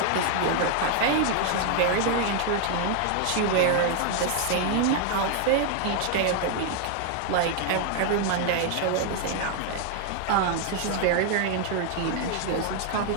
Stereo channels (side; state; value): both; different; correlation 0.00